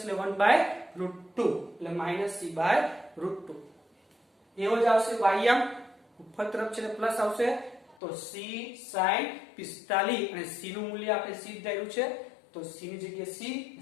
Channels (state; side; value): drops out; right; at 8.0 s